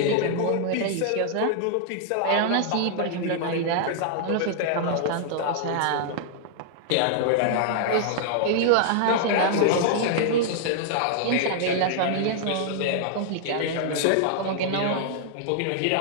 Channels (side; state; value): both; different; correlation -0.01